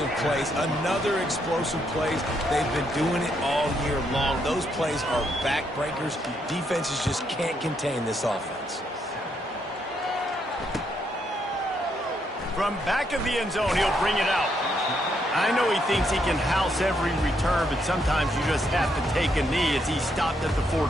plays. Another explosive plays. They've been doing it all year long. Those plays are backbreakers. Defenses just can't contain this offense. From back of the end zone, he'll bring it out. I know he thinks he can house every return, but sometimes you just have to take a knee as he stopped at the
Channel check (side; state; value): both; normal; correlation 0.76